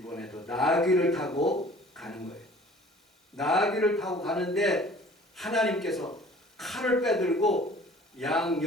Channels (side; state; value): both; normal; correlation 0.49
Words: 나귀를 타고 가는 거예요. 나귀를 타고 가는데 하나님께서 칼을 빼들고 양